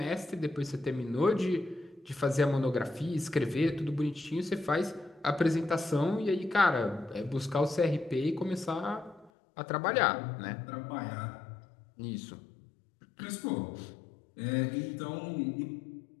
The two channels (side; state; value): right; drops out; at 9.3 s